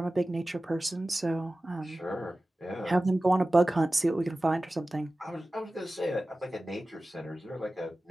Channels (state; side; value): normal; both; correlation 0.96